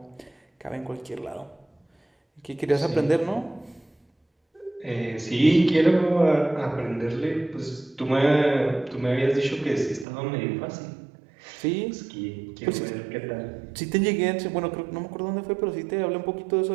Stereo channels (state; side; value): drops out; left; at 10.1 s